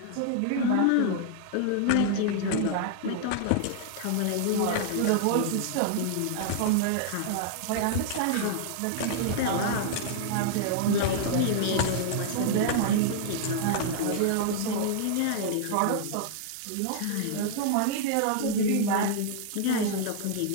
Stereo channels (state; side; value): different; both; correlation -0.01